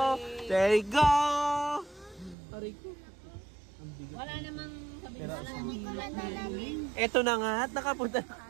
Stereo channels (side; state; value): left; drops out; at 2.4 s